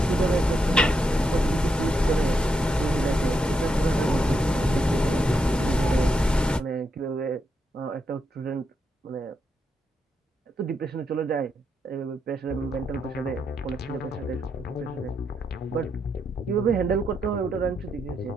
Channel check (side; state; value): both; normal; correlation 0.81